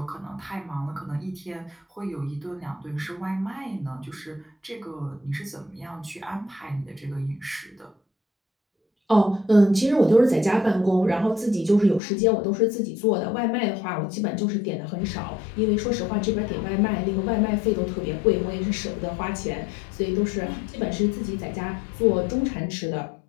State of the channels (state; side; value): drops out; right; at 12.0 s